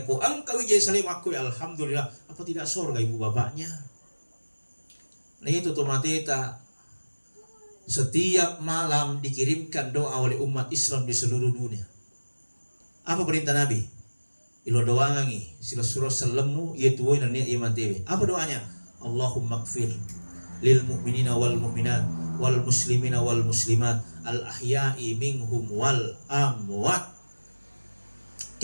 ko angka wijah salim aku alhamdulillah. Apa tidak surga ibu bapaknya? Nah itu tomateta setiap malam dikirimkan doa oleh umat Islam di seluruh dunia. Apa perintah Nabi? Ilo doangi sila surah salemu yaitu dan niat iman tewe. Apa doanya? Allahumma gfir lil mu'minina wal mu'minat wal muslimina wal muslimat al ahya'i minhum wal amwat.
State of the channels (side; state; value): both; inverted; correlation -1.00